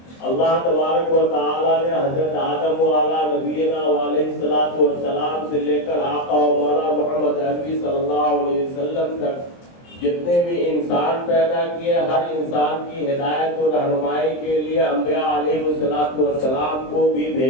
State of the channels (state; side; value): late; right; 23 ms